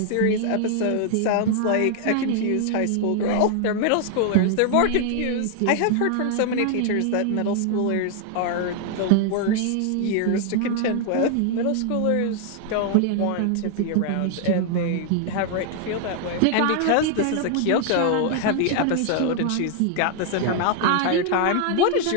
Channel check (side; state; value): both; different; correlation 0.00